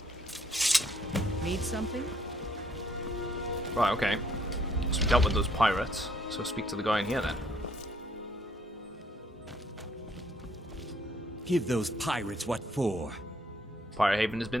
Need something? Right, okay. So we dealt with those pirates, so speak to the guy in here then. Give those pirates what for. Pirate Haven has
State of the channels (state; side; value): normal; both; correlation 0.66